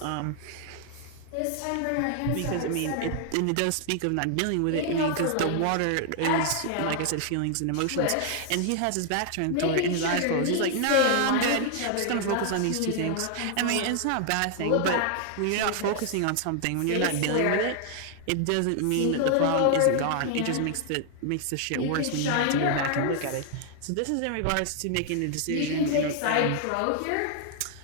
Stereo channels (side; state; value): both; different; correlation 0.00